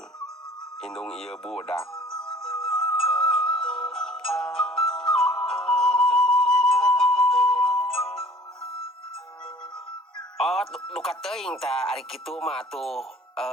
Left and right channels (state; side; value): normal; both; correlation 0.50